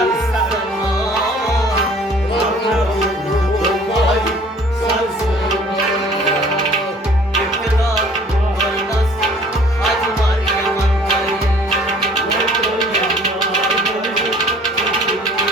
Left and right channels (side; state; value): both; normal; correlation 0.53